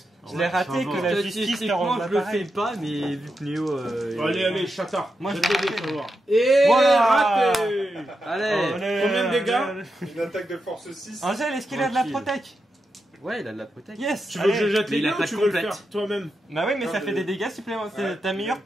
Je l'ai raté que la justice te Statistiquement, rende je le fais l'appareil. pas, mais vu que Néo. Allez, allez, chatard. Moi, je Jette l'ai les dés, raté. tu vas voir. Et Voilà. raté. Allez. Combien de dégâts? Une attaque de force 6. Angèle, est-ce qu'il a de la Tranquille. protec? Ouais, il a de la protect. Yes. Tu veux que je allez. jette Mais les il a dés ou pas tu de veux le complète. faire toi-même? Bah oui, mais Non, ça fait mais- des dégâts supplémentaires. C'est ta meilleure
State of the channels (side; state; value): both; normal; correlation 0.87